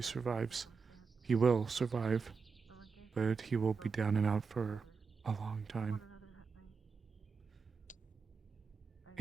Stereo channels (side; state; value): left; quieter; 5.2 dB